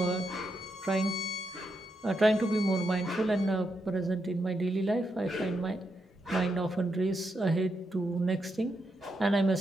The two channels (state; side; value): normal; both; correlation 0.83